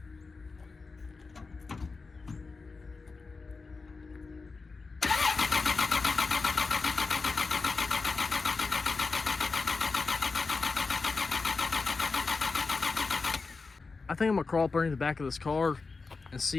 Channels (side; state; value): right; quieter; 4.2 dB